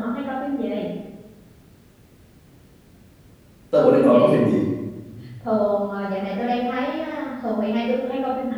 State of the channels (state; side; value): identical; both; correlation 1.00